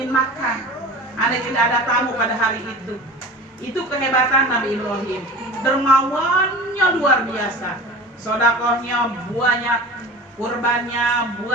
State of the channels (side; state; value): both; normal; correlation 0.36